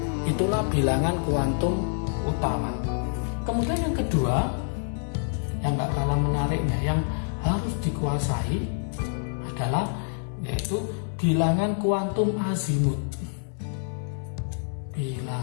Itulah bilangan kuantum utama. Kemudian yang kedua, yang nggak kalah menariknya, yang harus dikuasai adalah yaitu bilangan kuantum azimut.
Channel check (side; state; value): right; silent; digital silence